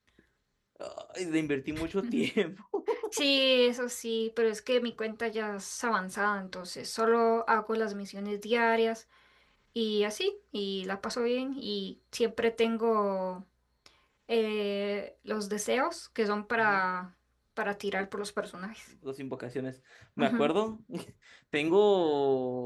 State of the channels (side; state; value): both; identical; correlation 1.00